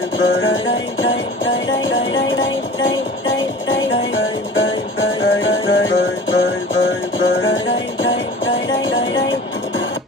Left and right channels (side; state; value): both; normal; correlation 0.40